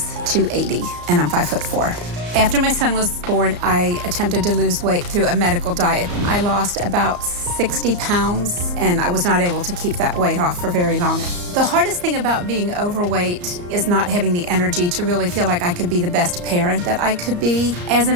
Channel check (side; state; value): left; late; 34 ms